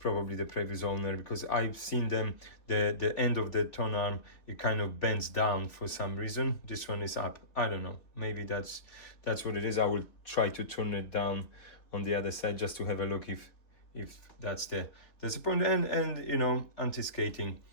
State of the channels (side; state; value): right; late; 3.5 ms